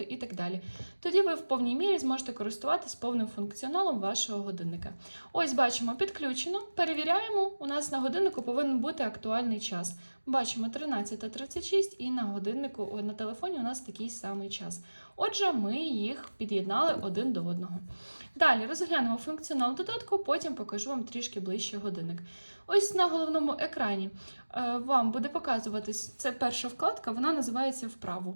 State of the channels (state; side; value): inverted; both; correlation -1.00